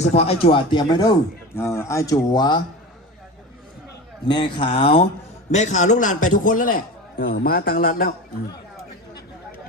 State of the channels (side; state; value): both; normal; correlation 0.29